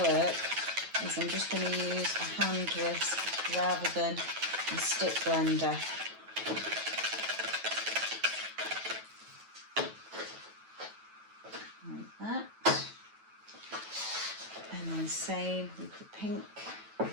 work, is I'm just going to use a hand whisk rather than a stick blender. Like that. And then same with the pink.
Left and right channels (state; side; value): late; left; 9.2 ms